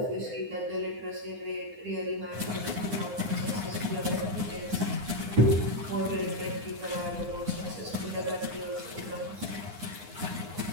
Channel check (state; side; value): late; left; 9.7 ms